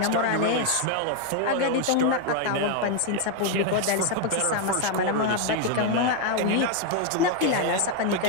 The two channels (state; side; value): different; both; correlation 0.01